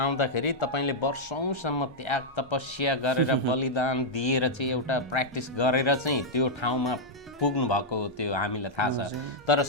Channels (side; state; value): both; normal; correlation -0.05